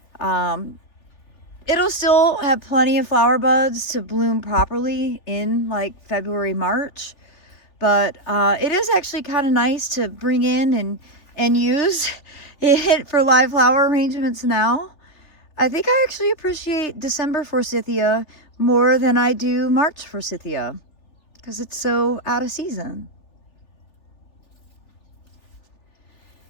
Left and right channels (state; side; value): late; right; 3.4 ms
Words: It'll still have plenty of flower buds to bloom properly in like February, March. But it is actually kind of nice to bring in and use it for live flower arrangements now. I think I actually appreciate December forsythia more than I do March forsythia because it's so out of season.